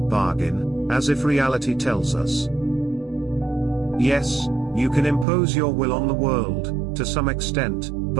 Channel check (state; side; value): drops out; left; at 5.2 s